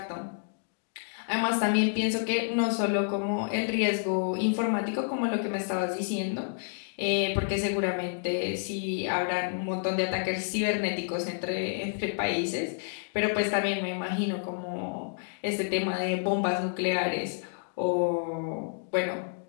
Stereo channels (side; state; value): right; silent; digital silence